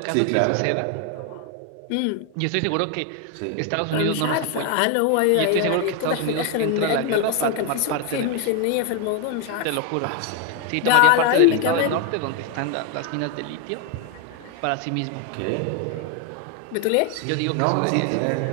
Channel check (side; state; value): both; different; correlation 0.01